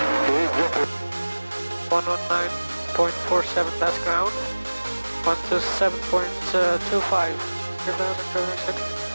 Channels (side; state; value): both; inverted; correlation -1.00